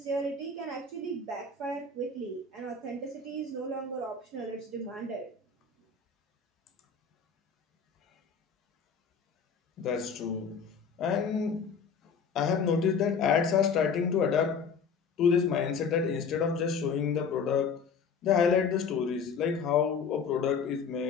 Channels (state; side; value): quieter; right; 5.5 dB